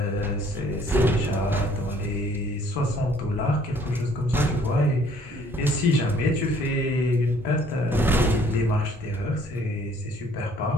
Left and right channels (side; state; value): both; normal; correlation 0.59